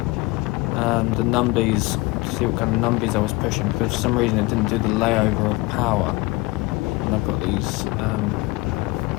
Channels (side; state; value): right; quieter; 22.7 dB